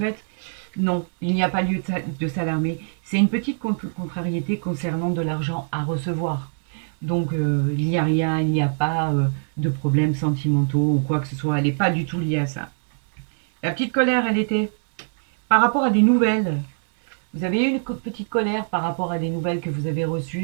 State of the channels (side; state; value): left; silent; 63 dB below the other